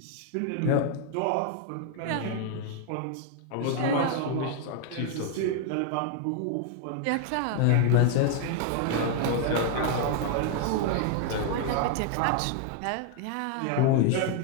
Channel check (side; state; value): both; different; correlation 0.00